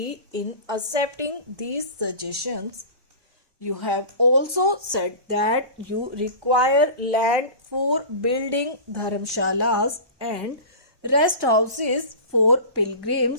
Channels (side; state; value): left; late; 1.2 ms